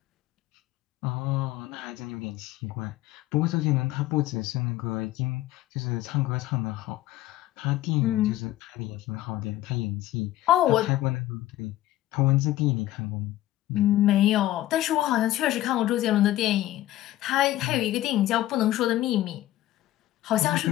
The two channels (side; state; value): right; quieter; 15.0 dB